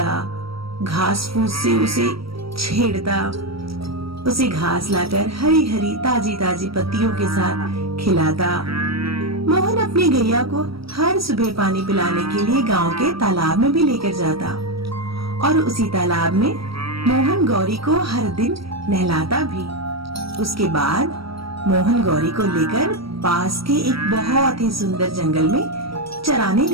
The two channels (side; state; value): left; late; 0.75 ms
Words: घास फूस से उसे छेड़ता, उसे घास लाकर हरी हरी ताजी ताजी पत्तियों के साथ खिलाता। मोहन अपनी गैया को हर सुबह पानी पिलाने के लिए गांव के तालाब में भी लेकर जाता और उसी तालाब में मोहन गौरी को हर दिन नहलाता भी। उसके बाद मोहन गौरी को लेकर पास के एक बहुत ही सुंदर जंगल में चराने